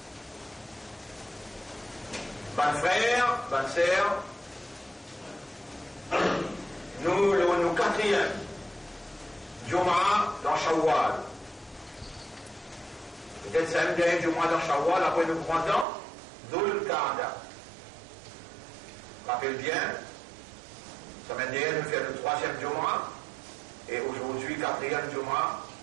Ban frère, ban sœur, nous quatrième, Jum'a dans Shawwal. Peut-être c'est un dernier Jum'a dans Shawwal, après nous prenons Dhul Qa'da. Rappelle bien, semaine dernière, nous faisons le troisième Jum'a, et aujourd'hui, quatrième Jum'a,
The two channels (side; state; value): left; drops out; at 15.9 s